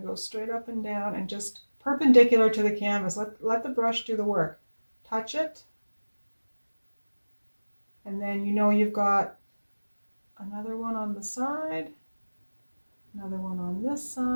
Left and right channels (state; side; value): inverted; both; correlation -1.00